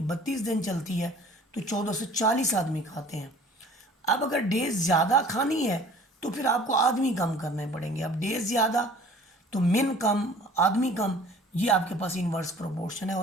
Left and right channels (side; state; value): both; normal; correlation 0.49